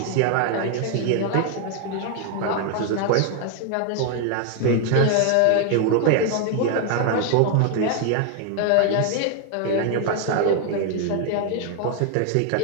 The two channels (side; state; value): both; different; correlation 0.00